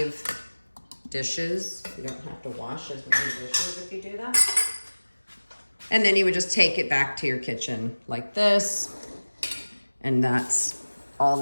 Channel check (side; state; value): both; inverted; correlation -1.00